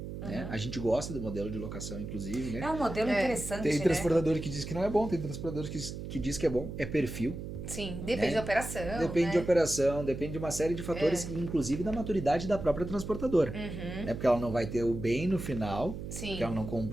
Né? A gente gosta do modelo de locação, inclusive. Né? É um modelo interessante, Tem né? transportador que diz que não é bom, tem transportador que diz que é bom. É perfil. Sim, depende Né? da operação, Depende né? de operação, depende de uma série de fatores, inclusive da maturidade da própria transportadora. Né? Porque ela não vai ter o bem no final, Sim. que ela não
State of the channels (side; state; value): right; noise; hum, 8 dB below the sound